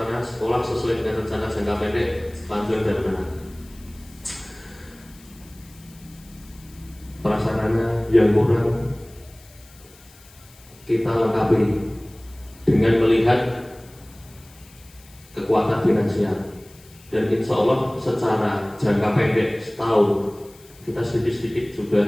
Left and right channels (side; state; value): left; noise; hiss, 25 dB below the sound